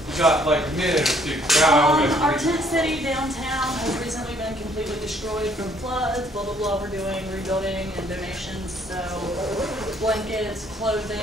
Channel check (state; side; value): normal; both; correlation 0.63